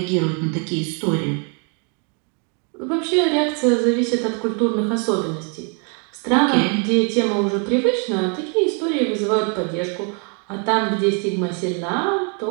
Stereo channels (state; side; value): quieter; left; 38.3 dB